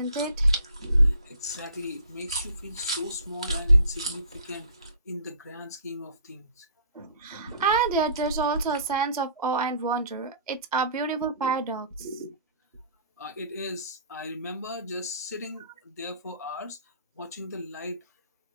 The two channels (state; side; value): inverted; both; correlation -0.51